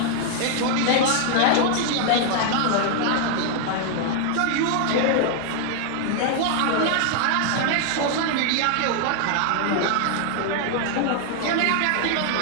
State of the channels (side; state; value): both; different; correlation 0.00